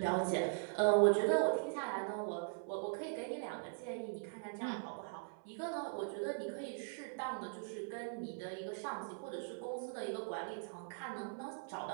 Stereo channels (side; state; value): left; silent; 51 dB below the other